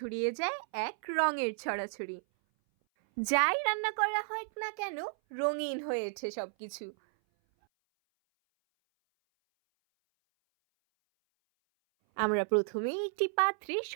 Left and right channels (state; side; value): silent; left; 56 dB below the other